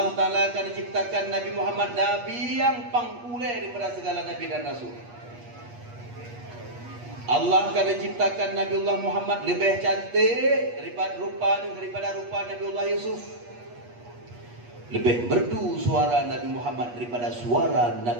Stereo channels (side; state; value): left; late; 8.3 ms